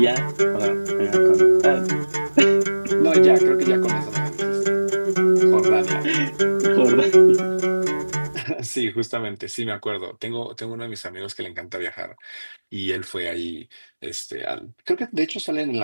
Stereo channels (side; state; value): both; inverted; correlation -1.00